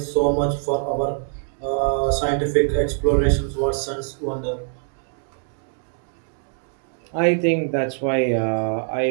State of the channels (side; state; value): left; silent; 63 dB below the other